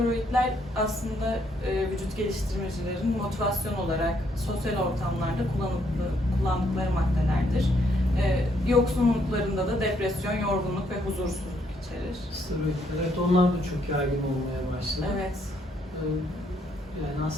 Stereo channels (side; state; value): both; normal; correlation 0.71